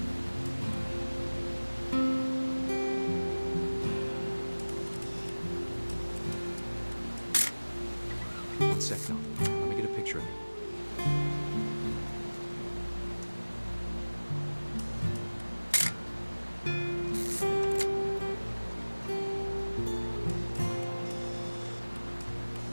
One sec, Dawn. Let me get a picture of you.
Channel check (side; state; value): both; inverted; correlation -1.00